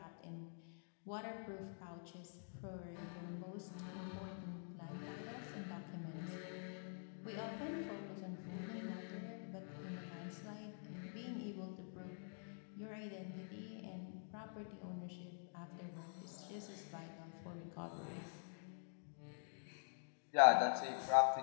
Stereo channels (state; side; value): silent; right; digital silence